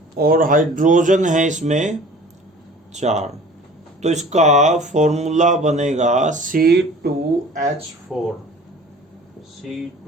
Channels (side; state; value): both; normal; correlation 0.46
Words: और हाइड्रोजन है इसमें 4, तो इसका फॉर्मूला बनेगा C2H4।